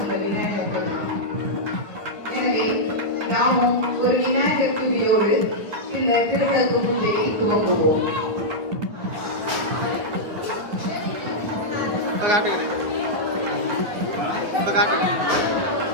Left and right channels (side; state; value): left; late; 9.8 ms